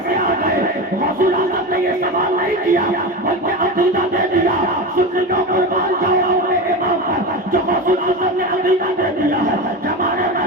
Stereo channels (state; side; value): normal; both; correlation 0.23